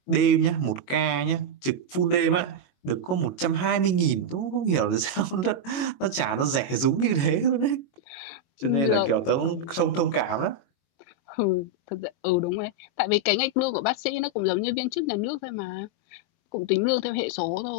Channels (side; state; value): right; late; 22 ms